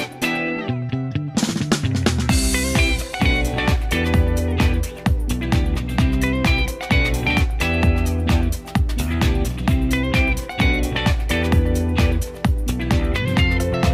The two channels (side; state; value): both; identical; correlation 1.00